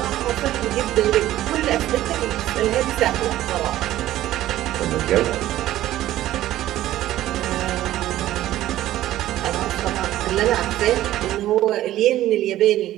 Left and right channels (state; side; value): quieter; left; 14.1 dB